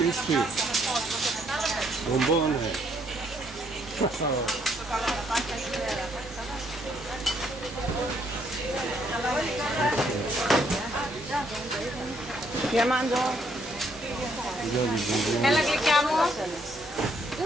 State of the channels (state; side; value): normal; both; correlation 0.70